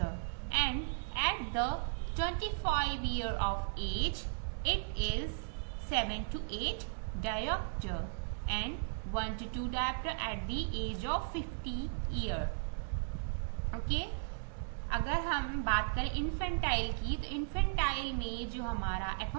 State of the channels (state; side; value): silent; left; digital silence